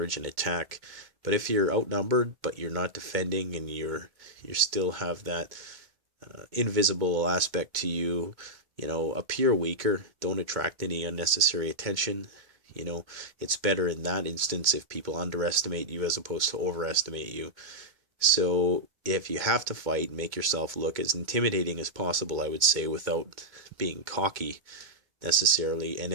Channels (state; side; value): late; left; 2.1 ms